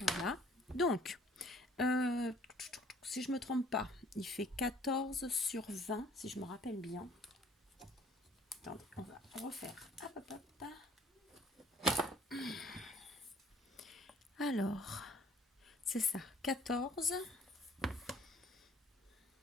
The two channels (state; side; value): normal; both; correlation 0.56